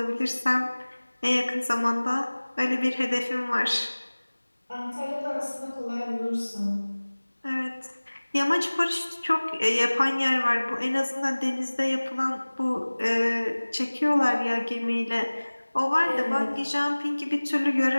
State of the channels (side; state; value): both; inverted; correlation -1.00